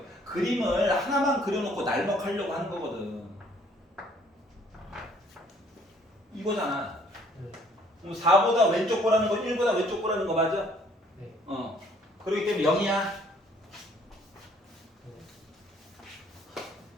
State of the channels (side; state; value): both; normal; correlation 0.61